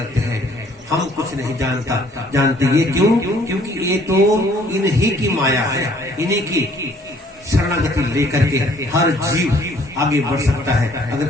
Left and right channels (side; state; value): both; normal; correlation 0.60